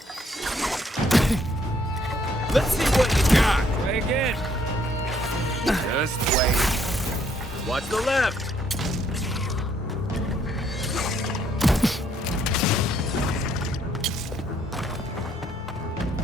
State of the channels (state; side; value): normal; both; correlation 0.68